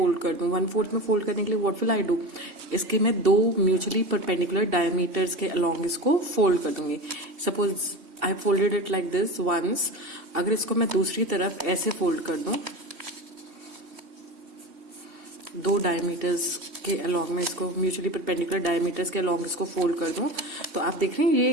कर दूं, 1/4 में फोल्ड करने के लिए व्हाट विल आई डू, इसके मैं दो म्यूचुअली परपेंडिकुलर डायमीटर्स के अलोंग इसको फोल्ड कर दूंगी. Suppose I folded it like this once. अगर इसको मैं दूसरी तरफ ऐसे फोल्ड कर दूं, दो डायमीटर्स के अलोंग में इसको म्यूचुअली परपेंडिकुलर डायमीटर्स के अलोंग इसको फोल्ड कर दूं, तो आप देख रहे हैं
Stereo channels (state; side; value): late; left; 2.7 ms